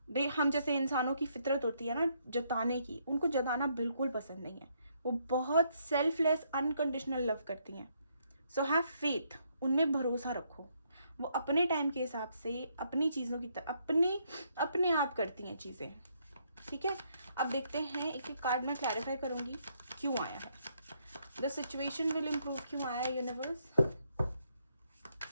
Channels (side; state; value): both; inverted; correlation -0.73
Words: they, हम जैसे इंसानों की फितरत होती है ना जताने की, उनको जताना बिल्कुल पसंद नहीं है। वो बहुत सेल्फलेस अनकंडीशनल लव करती हैं। सो हैव फेथ, उनमें भरोसा रखो। वो अपने टाइम के हिसाब से अपनी चीज़ों की तरह अपने आप करती हैं चीज़ें, ठीक है। अब देखते हैं, एक एक कार्ड में क्लैरिफाई करूंगी क्यों आया है। द सिचुएशन विल इम्प्रूव क्यों आया है universe?